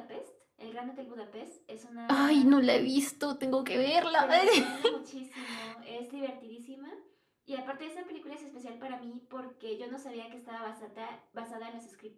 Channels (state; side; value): identical; both; correlation 1.00